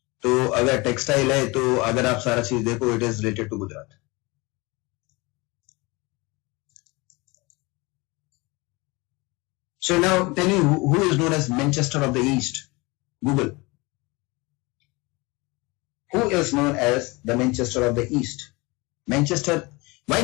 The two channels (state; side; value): quieter; right; 24.9 dB